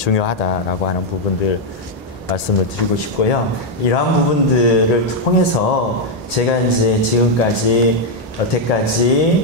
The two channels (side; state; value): both; normal; correlation 0.01